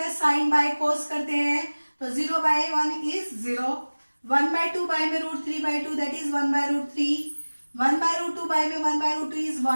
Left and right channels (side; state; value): both; inverted; correlation -1.00